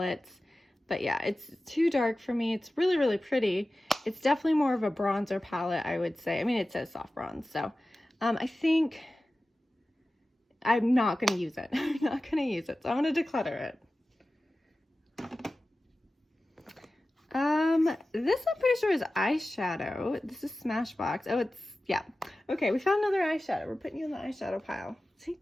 but yeah, it's too dark for me. It's really, really pretty. It's definitely more of a bronzer palette, I would say. I mean, it says soft bronze, so I think I'm not going to use it. I'm not going to use it. So I'm going to declutter it. This I'm pretty sure is eyeshadow. This is Smashbox. Oh, yeah. Okay, we found another eyeshadow. We're putting you in the eyeshadow pile. See,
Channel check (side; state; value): both; normal; correlation 0.95